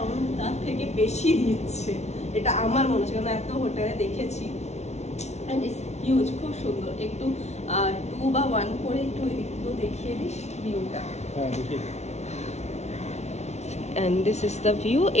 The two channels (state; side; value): late; right; 0.32 ms